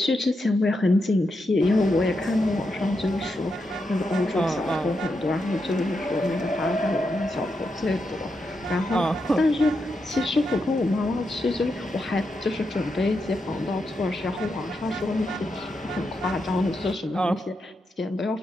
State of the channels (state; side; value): normal; both; correlation 0.84